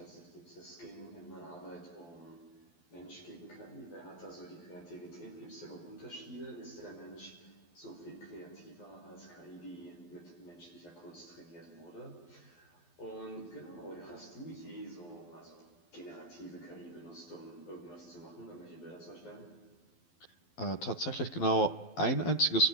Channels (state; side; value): late; right; 12 ms